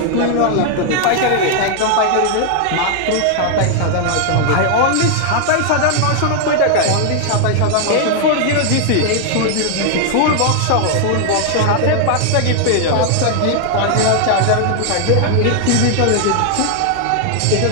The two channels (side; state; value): both; different; correlation 0.00